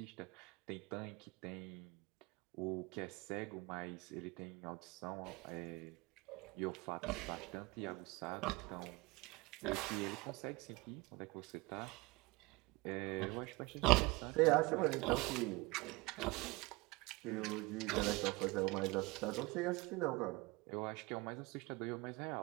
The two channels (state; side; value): quieter; left; 23.7 dB